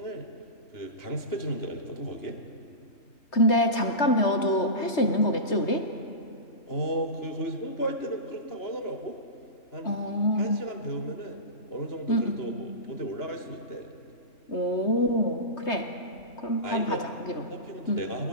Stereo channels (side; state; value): right; late; 3.2 ms